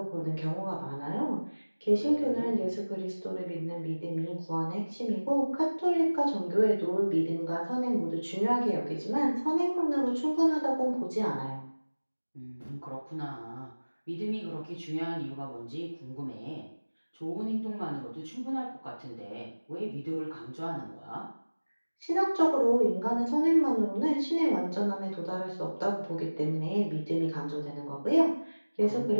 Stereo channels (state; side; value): inverted; both; correlation -1.00